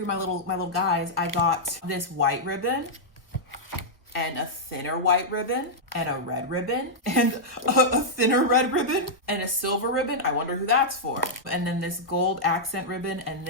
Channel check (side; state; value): both; normal; correlation -0.07